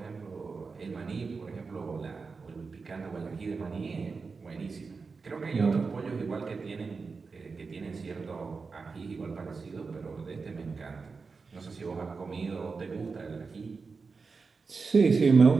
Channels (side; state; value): left; quieter; 4.6 dB